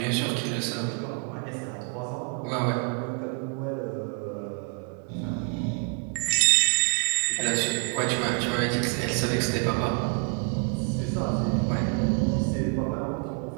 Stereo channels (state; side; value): quieter; left; 37.3 dB